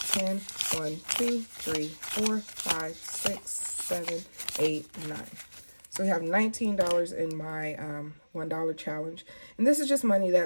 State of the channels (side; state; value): both; inverted; correlation -1.00